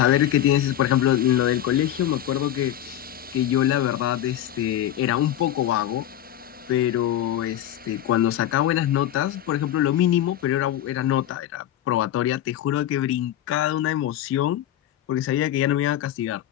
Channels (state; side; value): quieter; right; 11.9 dB